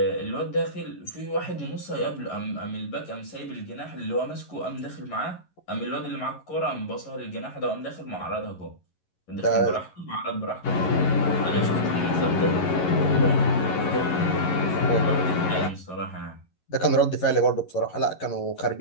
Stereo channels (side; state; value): right; late; 11 ms